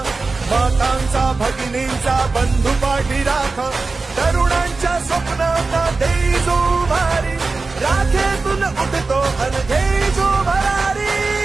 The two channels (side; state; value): left; quieter; 3.9 dB